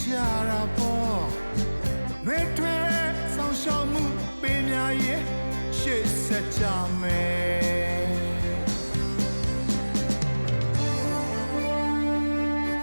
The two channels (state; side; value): inverted; both; correlation -1.00